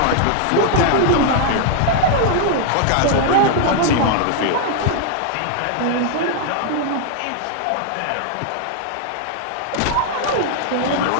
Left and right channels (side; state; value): both; different; correlation 0.00